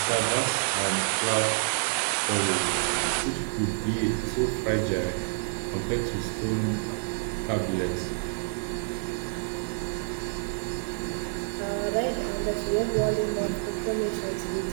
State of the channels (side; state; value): left; silent; digital silence